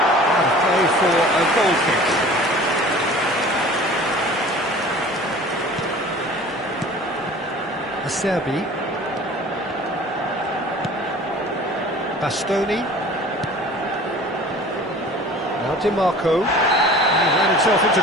And a play for a goal kick. Acerbi. Bastoni. Now DiMarco. He ran himself into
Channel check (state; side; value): normal; both; correlation 0.44